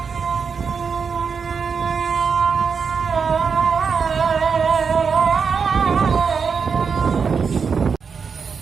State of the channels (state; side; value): quieter; left; 5.8 dB